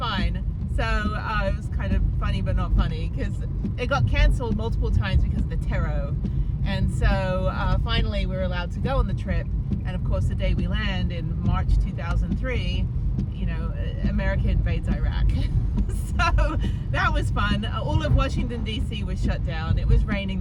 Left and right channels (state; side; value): identical; both; correlation 1.00